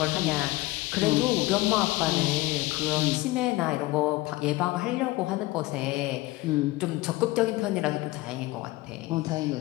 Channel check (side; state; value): right; quieter; 19.7 dB